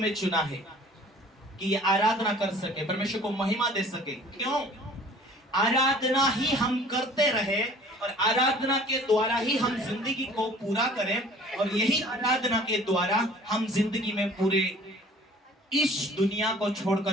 चुना है कि ये आराधना कर सके, परमेश्वर को महिमा दे सके। क्यों? आराधना ही हम करते रहे और आराधना के द्वारा ही हम जिंदगी को पूरा करें, और यही आराधना के द्वारा हम जिंदगी में पूरे इस दुनिया को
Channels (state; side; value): normal; both; correlation 0.50